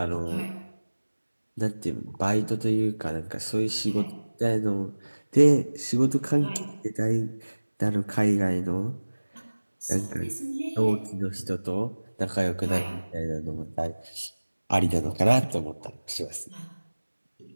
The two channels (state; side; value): inverted; both; correlation -1.00